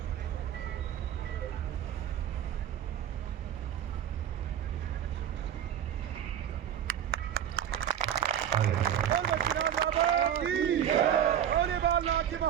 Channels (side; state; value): left; quieter; 9.7 dB